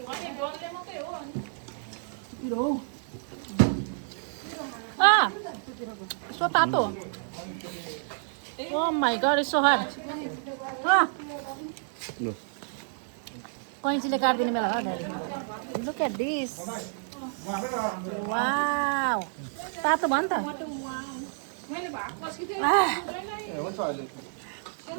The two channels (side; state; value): left; silent; digital silence